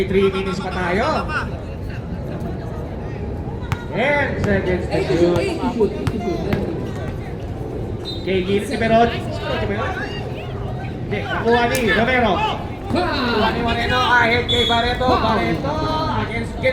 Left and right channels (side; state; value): both; identical; correlation 1.00